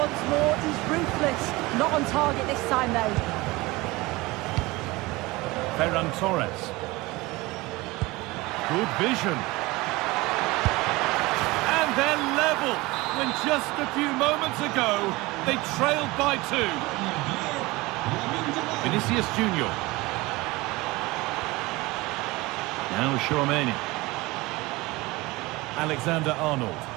more he's ruthless. Not on target this time though. Ferran Torres. Good vision. And they're level when just a few moments ago they trailed by 2. Vinicius Junior. Now Chouameni. Alexander-Arnold.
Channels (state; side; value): quieter; left; 21.7 dB